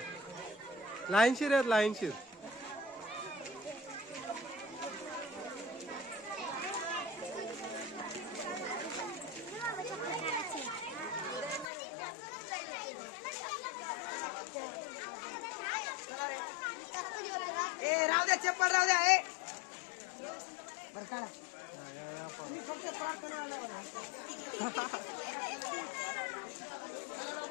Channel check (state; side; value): drops out; right; at 11.7 s